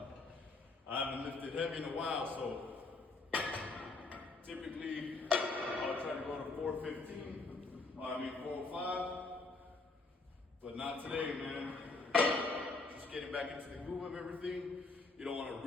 I haven't lifted heavy in a while, so typically, I'll try to go to 415, 405, but not today, man. Just getting back into the groove of everything. You don't want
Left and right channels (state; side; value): quieter; right; 3.6 dB